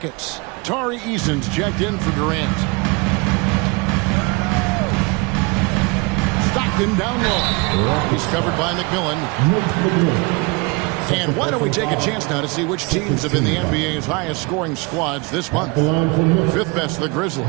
Tari Eason's checked in for Durant. Stockton down low. He's covered by McMillan. And why don't we take a chance now to see which teams have been the NBA's highest scoring squads this month. 5th best, the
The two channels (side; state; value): left; quieter; 27.9 dB